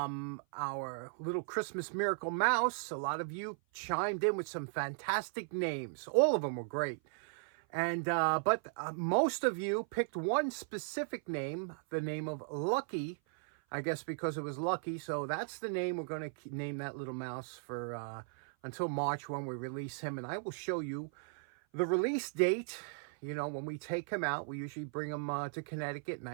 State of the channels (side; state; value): left; silent; 53 dB below the other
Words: little Christmas miracle mouse. A lot of you chimed in with some fantastic names. All of them were great. And but most of you picked one specific name, the name of Lucky, I guess because it was lucky. So that's the name we're going to name that little mouse for until March when we release him. And I will show you the release date. You know, when we take him out, we usually bring him to Connecticut,